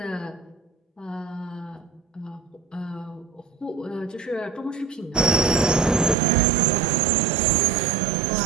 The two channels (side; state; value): left; drops out; at 6.2 s